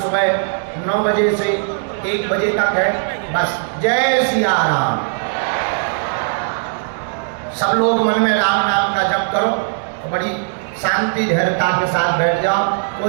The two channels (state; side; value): silent; left; digital silence